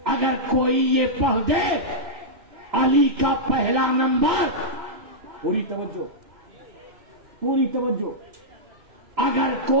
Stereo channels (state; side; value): late; left; 2.9 ms